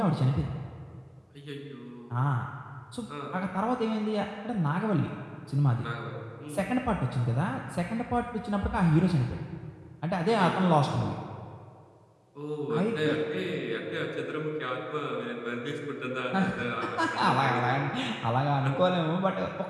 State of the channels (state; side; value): identical; both; correlation 1.00